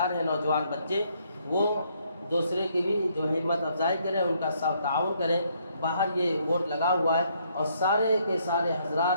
ہیں، نوجوان بچے، وہ دوسرے کی بھی جو ہمت افزائی کریں، ان کا ساتھ تعاون کریں۔ باہر یہ بورڈ لگا ہوا ہے اور سارے کے سارے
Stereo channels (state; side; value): inverted; both; correlation -0.70